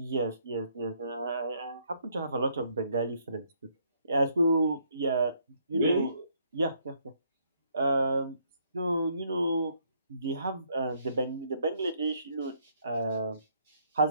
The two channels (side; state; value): both; inverted; correlation -0.69